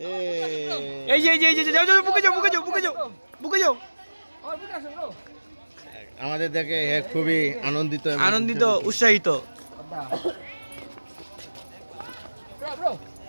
এই যে যাও বুকে যাও। আমাদের দেখে খুবই আনন্দিত উৎসাহিত।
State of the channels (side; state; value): both; inverted; correlation -1.00